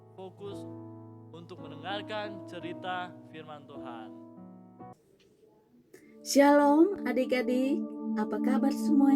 fokus untuk mendengarkan cerita firman Tuhan. Shalom adik-adik, apa kabar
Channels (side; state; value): both; identical; correlation 1.00